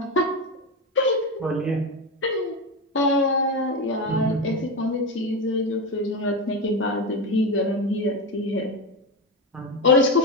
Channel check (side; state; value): both; normal; correlation 0.16